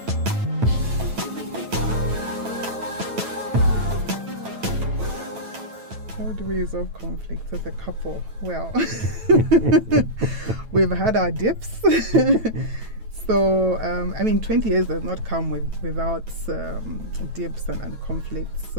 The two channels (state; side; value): late; left; 9.1 ms